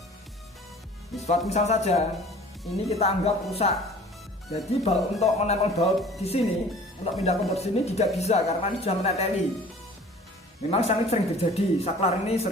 Misal saja ini kita anggap rusak. Jadi untuk menempel baut di sini untuk pindah kontur sini tidak bisa karena ini sudah mereteli. Memang sangat sering terjadi, saklar ini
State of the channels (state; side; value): normal; both; correlation 0.47